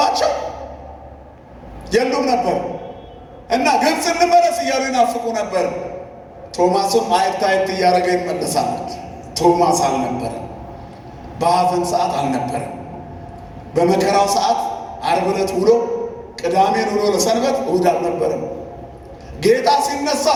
የሉም ነበር እና ግብፅ እንመለስ እያሉ ይናፍቁ ነበር። ቶማስም አየት አየት እያደረገ ይመለሳል። ቶማስ አልነበረም። በሐዘን ሰዓት አልነበረም። በመከራው ሰዓት ዓርብ ዕለት ውሎ ቅዳሜን ውሎ ለሰንበት እሑድ አልነበረም። ጌታ ሲነሳ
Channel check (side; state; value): both; identical; correlation 1.00